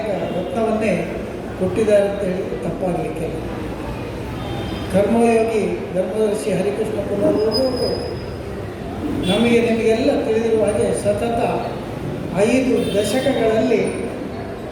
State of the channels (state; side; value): identical; both; correlation 1.00